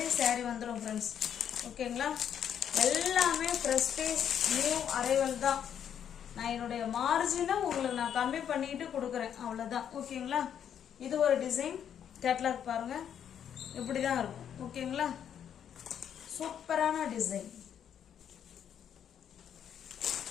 சாரி வந்துடும் ஃப்ரெண்ட்ஸ். ஓகேங்களா, எல்லாமே ப்ரெஸ்டீஜ் நியூ அரைவல் தான். நான் என்னுடைய மார்ஜினை உங்களுக்கு நான் கம்மி பண்ணிட்டு கொடுக்குறேன், அவ்வளோதான். ஓகேங்களா, இது ஒரு டிசைன் கேட்லாக் பாருங்க, இப்படி தான் இருக்கும். ஓகேங்களா, சூப்பரான டிசைன்.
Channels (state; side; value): quieter; right; 8.9 dB